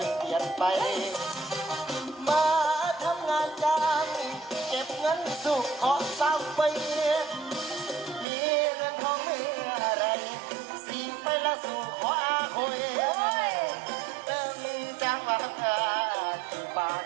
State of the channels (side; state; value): left; drops out; at 8.2 s